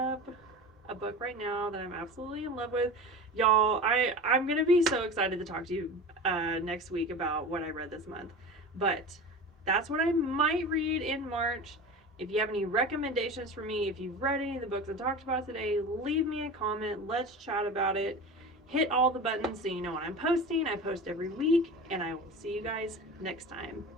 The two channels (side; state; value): both; normal; correlation 0.32